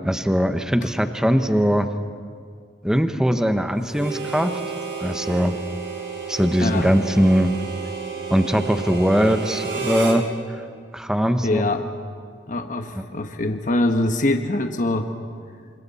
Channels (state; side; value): normal; both; correlation 0.84